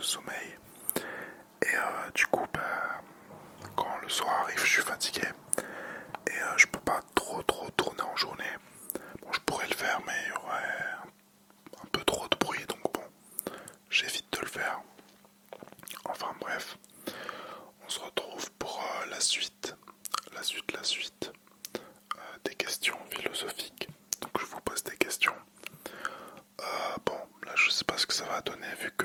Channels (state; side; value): identical; both; correlation 1.00